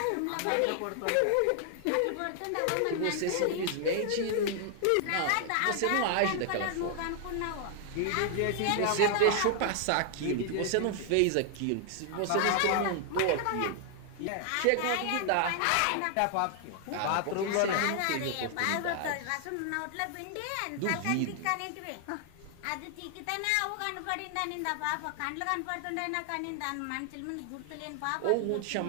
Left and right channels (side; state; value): both; different; correlation 0.00